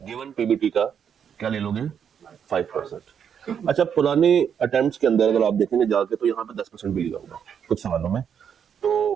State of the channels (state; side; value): quieter; left; 7.9 dB